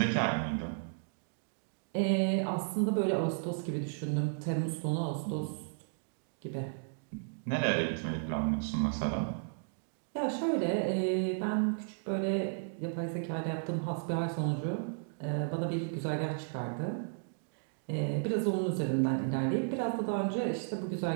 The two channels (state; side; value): silent; left; digital silence